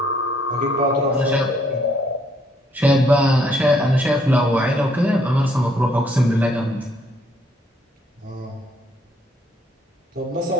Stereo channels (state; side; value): normal; both; correlation 0.67